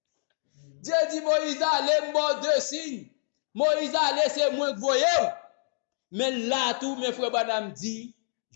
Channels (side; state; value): right; silent; digital silence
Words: Dieu dit, Moïse allez, moi 2 signes. Moïse allez, c'est moi que vous voyez. Mais là, tout mes frères Branham dit,